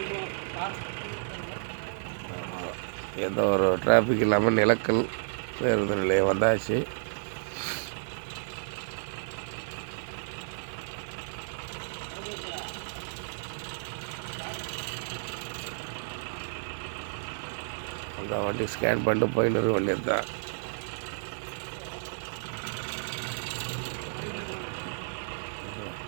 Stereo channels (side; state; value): left; silent; digital silence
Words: எந்த ஒரு டிராஃபிக் இல்லாமல் நிலக்கல் பேருந்து நிலையம் வந்தாச்சு. அந்த வண்டி ஸ்கேன் பண்ணிட்டு போயின்னு இருக்க வேண்டியது தான்.